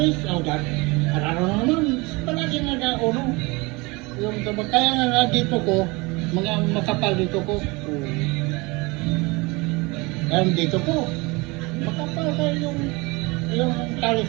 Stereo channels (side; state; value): left; quieter; 25.4 dB